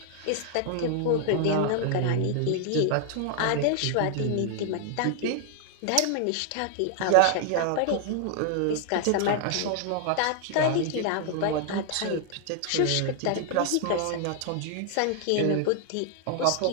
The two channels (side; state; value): both; different; correlation 0.00